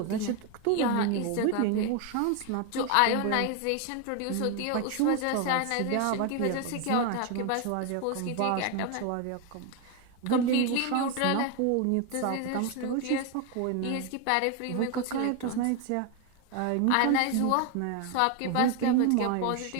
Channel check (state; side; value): different; both; correlation 0.01